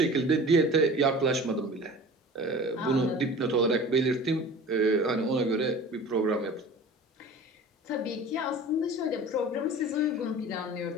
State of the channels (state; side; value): normal; both; correlation 0.40